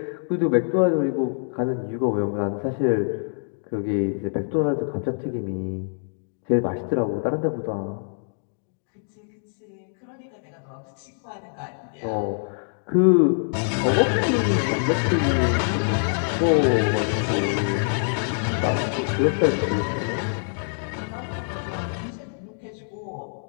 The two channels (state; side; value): silent; right; digital silence